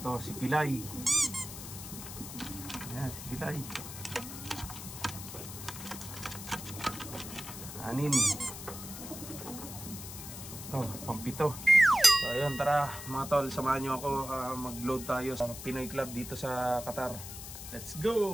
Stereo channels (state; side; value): noise; left; hiss, 10 dB below the sound